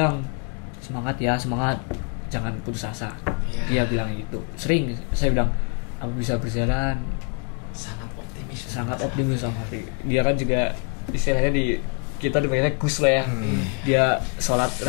semangat, jangan putus asa. Dia bilang gitu. Sering saya bilang aku bisa berjalan. Sangat optimis sama Safri. Dia kan juga istilahnya kita dipanggilnya Gus lah ya. Dia sholat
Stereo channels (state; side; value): quieter; right; 35.8 dB